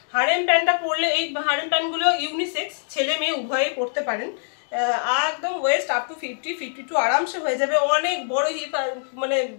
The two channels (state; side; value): silent; right; digital silence